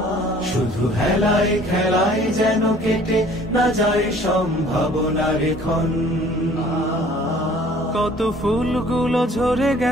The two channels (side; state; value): both; normal; correlation 0.53